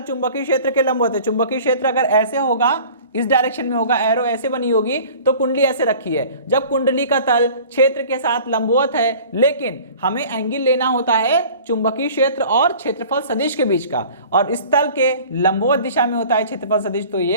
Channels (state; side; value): inverted; both; correlation -0.45